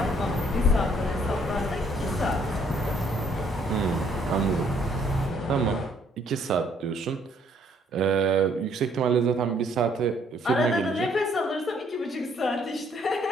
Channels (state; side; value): normal; both; correlation 0.65